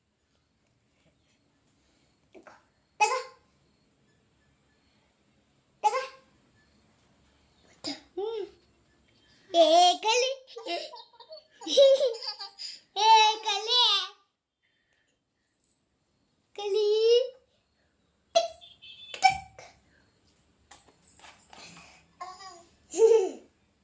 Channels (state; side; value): identical; both; correlation 1.00